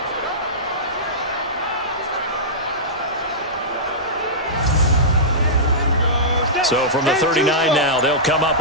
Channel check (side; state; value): both; normal; correlation -0.15